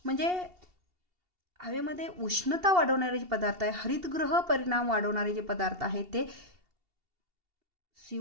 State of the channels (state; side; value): late; left; 2.7 ms